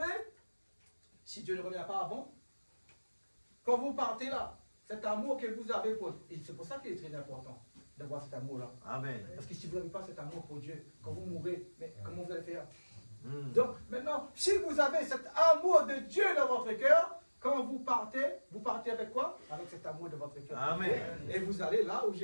si Dieu ne revient pas avant, quand vous partez là, cet amour que vous avez pour... Et c'est pour ça qu'il est très important d'avoir cet amour-là. Amen. Parce que si vous n'avez pas cet amour pour Dieu, quand vous mourrez, mais comment vous allez faire? Donc maintenant, si vous avez cet amour de Dieu dans votre cœur, quand vous partez avec quoi? Avec cet amour de votre cœur. Amen. Et vous allez là où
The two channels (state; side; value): inverted; both; correlation -1.00